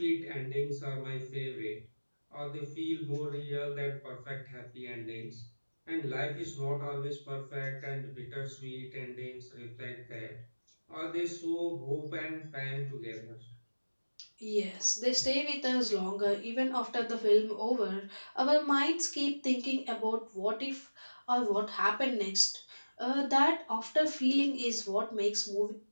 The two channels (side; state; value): both; inverted; correlation -1.00